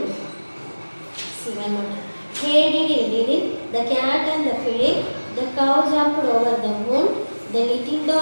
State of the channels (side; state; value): both; inverted; correlation -1.00